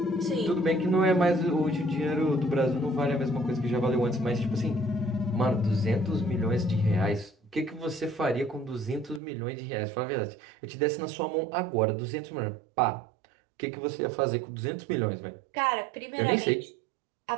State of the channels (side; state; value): left; drops out; at 9.2 s